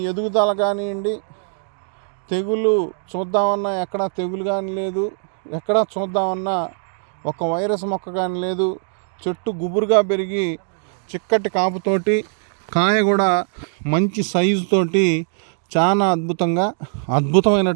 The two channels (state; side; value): silent; left; 65 dB below the other